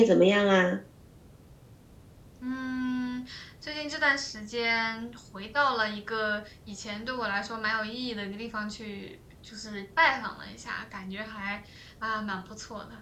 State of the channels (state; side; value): identical; both; correlation 1.00